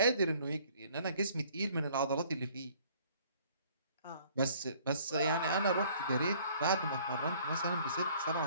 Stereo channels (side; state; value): both; inverted; correlation -0.57